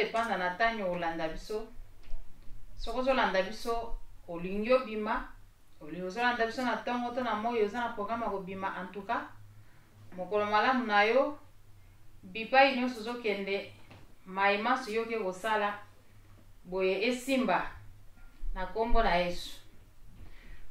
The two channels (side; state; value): both; identical; correlation 1.00